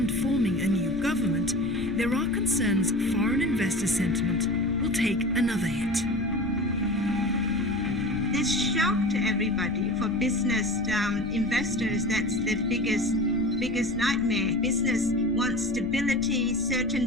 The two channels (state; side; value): noise; left; rumble, 14 dB below the sound